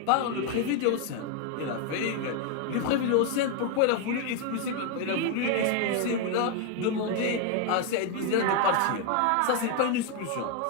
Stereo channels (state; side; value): different; both; correlation 0.01